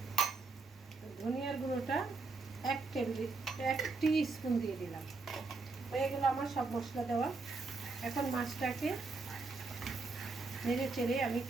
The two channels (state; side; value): quieter; left; 3.9 dB